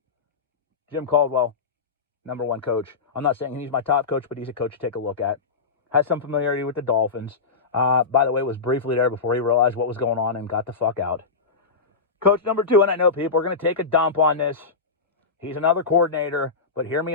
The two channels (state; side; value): quieter; right; 4.8 dB